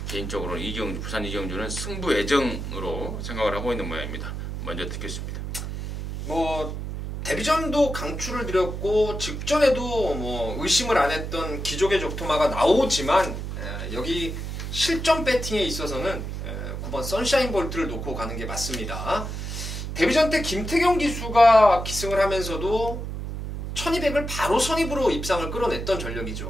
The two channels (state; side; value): noise; right; hum, 5 dB below the sound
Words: 개인적으로는 이경주, 부산 이경주는 승부 애정으로 생각을 하고 있는 모양입니다. 먼저 듣겠습니다. 뭐 데뷔전도 강추를 드렸고 직전에도 뭐 의심을 안 했던 기적의 적토마가 나오지만 여기 실점 배팅에 있어서는 9번 선샤인 볼트를 놓고 가는 게 맞습니다. 데뷔전 때 김태경 기수가 기승을 하면서도 1200을 바로 선입으로 입상을 끌어냈던